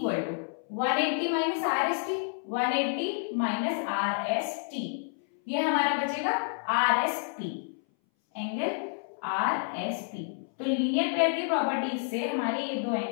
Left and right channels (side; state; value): right; silent; 58 dB below the other